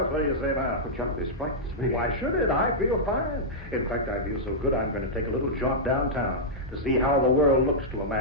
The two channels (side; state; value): both; normal; correlation -0.10